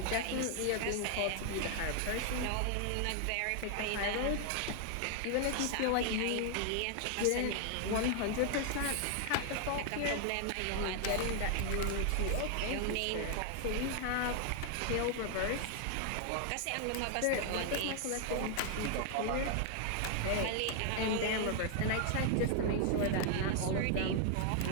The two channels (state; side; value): different; both; correlation 0.00